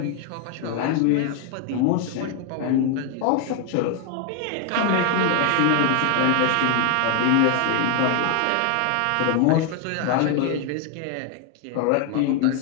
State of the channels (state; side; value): different; both; correlation 0.00